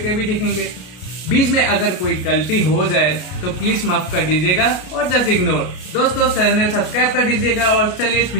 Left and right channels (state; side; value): late; right; 33 ms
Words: भी देखेंगे। बीच में अगर कोई गलती हो जाए तो प्लीज माफ कर दीजिएगा और जस्ट इग्नोर। दोस्तों चैनल सब्सक्राइब कर दीजिएगा और चलिए इस